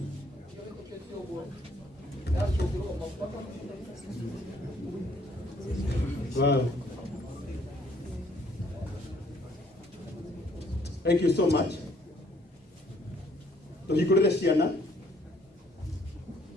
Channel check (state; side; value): normal; both; correlation 0.64